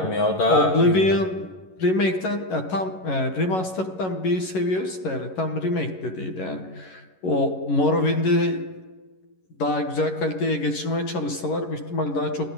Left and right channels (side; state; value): right; late; 11 ms